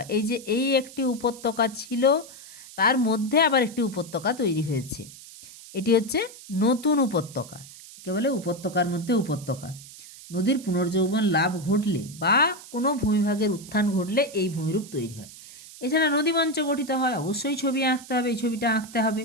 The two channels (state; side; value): noise; right; hiss, 17 dB below the sound